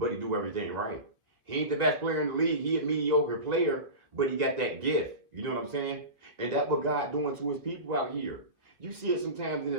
he do everything right. He ain't the best player in the league. He a mediocre player, but he got that gift. You know what I'm saying? And that's what God doing to his people out here. You see it sometimes in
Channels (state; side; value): late; left; 2.0 ms